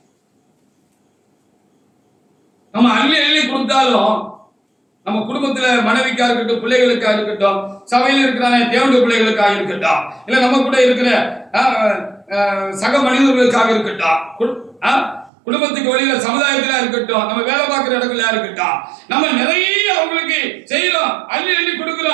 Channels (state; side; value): drops out; left; at 15.3 s